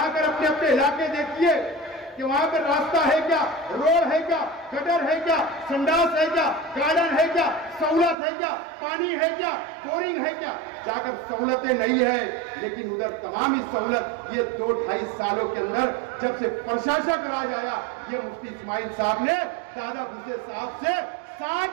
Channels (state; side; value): drops out; left; at 8.2 s